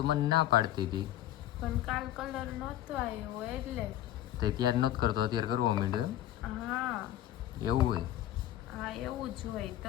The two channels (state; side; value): quieter; right; 12.9 dB